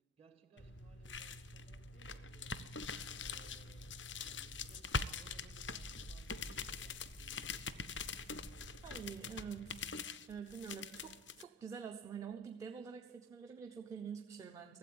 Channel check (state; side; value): normal; both; correlation 0.35